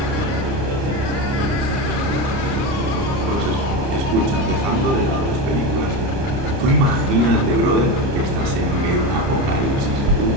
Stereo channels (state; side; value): late; left; 30 ms